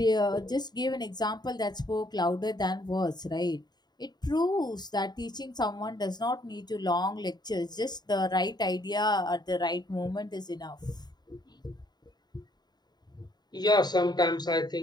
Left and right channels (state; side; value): late; right; 0.20 ms